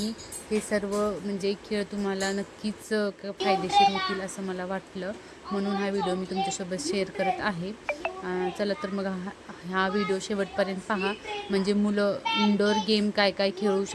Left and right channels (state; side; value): identical; both; correlation 1.00